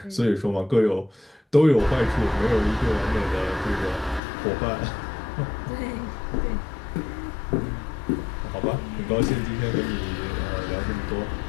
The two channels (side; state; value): right; drops out; at 4.2 s